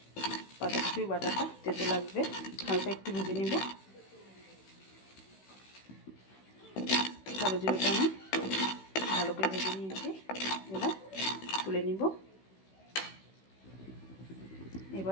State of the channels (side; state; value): right; late; 16 ms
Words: পাতাকপির বাটাটা তেতো লাগবে। হালকা একটু ভেজে নেব। কালো জিরেটা আমি ভালো করে ভেজে নিয়েছি, এবার তুলে নিব।